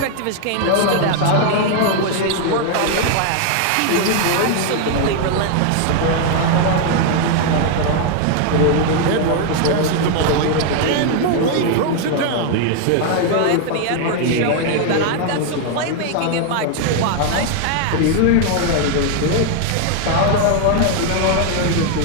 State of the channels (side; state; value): both; different; correlation 0.00